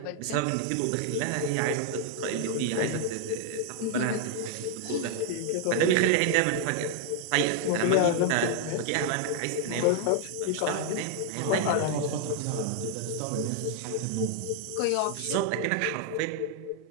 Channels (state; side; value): different; both; correlation 0.00